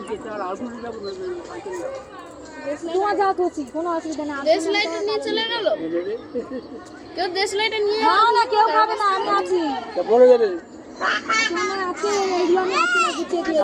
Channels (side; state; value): both; identical; correlation 1.00